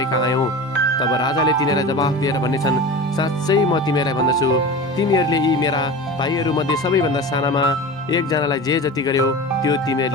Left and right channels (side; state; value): both; normal; correlation 0.31